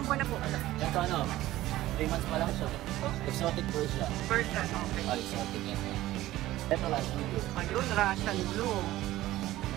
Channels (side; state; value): left; quieter; 15.8 dB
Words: buwan na po? Ito ano? 3 months pa lang siya. Exotic Persian. Persian, okay. Exotic yan. Ito Russian Blue. Ayun, Russian Blue.